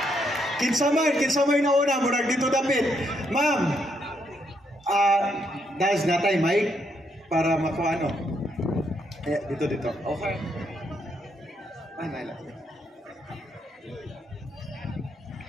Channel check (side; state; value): both; normal; correlation 0.76